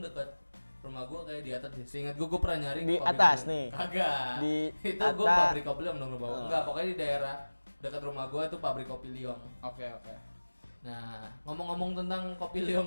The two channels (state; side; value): inverted; both; correlation -1.00